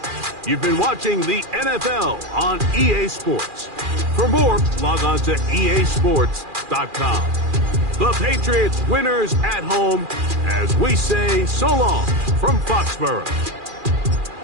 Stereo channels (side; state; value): left; late; 2.4 ms